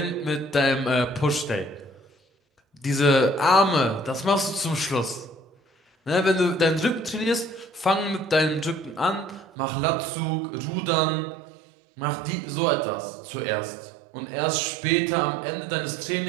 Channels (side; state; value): left; drops out; at 9.5 s